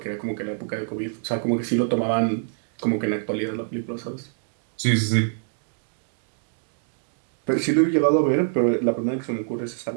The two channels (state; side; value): silent; left; digital silence